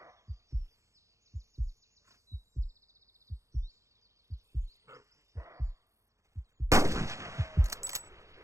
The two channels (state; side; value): late; left; 0.15 ms